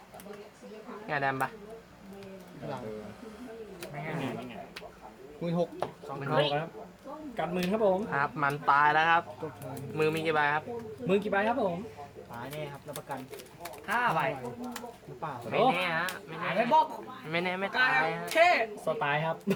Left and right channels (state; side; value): identical; both; correlation 1.00